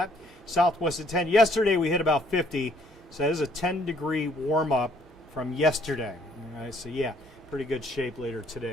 Southwest at 10. Yesterday we hit about 50, so that is a 10-degree warm-up from yesterday. All right, so yeah, pretty good shape later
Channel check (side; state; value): both; normal; correlation 0.64